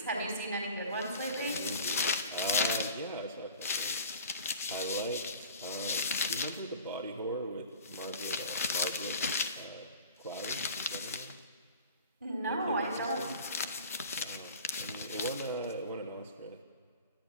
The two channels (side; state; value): both; inverted; correlation -0.41